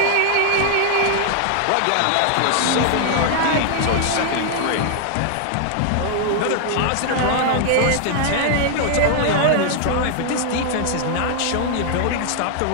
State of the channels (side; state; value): both; different; correlation 0.00